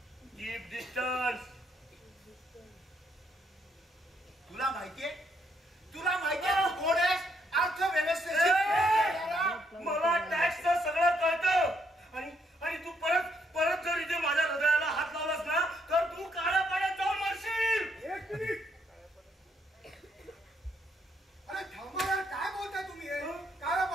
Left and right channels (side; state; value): both; normal; correlation 0.73